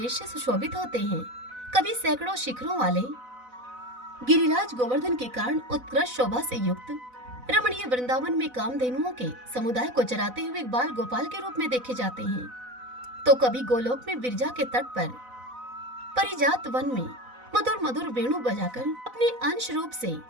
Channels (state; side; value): late; left; 4.0 ms